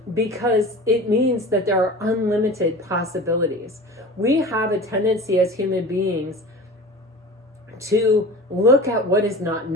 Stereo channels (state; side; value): normal; both; correlation 0.36